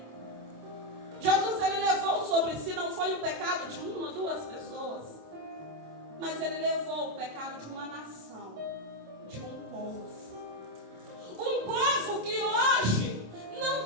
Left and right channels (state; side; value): late; left; 27 ms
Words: Jesus, ele levou sobre si, não foi o pecado de uma, duas pessoas, mas ele levou o pecado de uma nação, de um povo. Um povo que hoje não